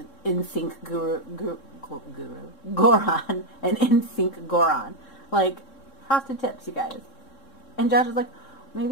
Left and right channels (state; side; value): late; right; 3.7 ms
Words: NSYNC Goron, an NSYNC Goron. Like, frosted tips, you guys. And Josh was like,